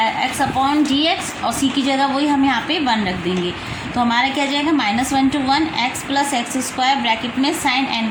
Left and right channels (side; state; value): both; identical; correlation 1.00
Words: upon dx, और c की जगह वही हम यहाँ पे 1 रख देंगे, तो हमारा क्या जाएगा -1 to 1 x plus x square bracket में sine N